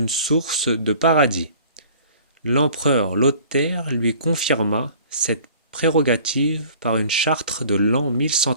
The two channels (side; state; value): both; inverted; correlation -0.50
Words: source de paradis. L'empereur Lothaire lui confirma cette prérogative par une charte de l'an